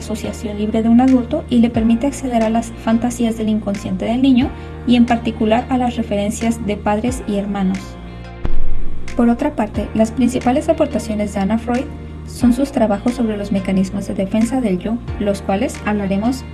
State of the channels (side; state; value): both; identical; correlation 1.00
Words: libre de un adulto y le permite acceder a las fantasías del inconsciente del niño y en particular a las referencias de padres y hermanos. Por otra parte, las principales aportaciones de Anna Freud son sus trabajos sobre los mecanismos de defensa del yo, los cuales hablaremos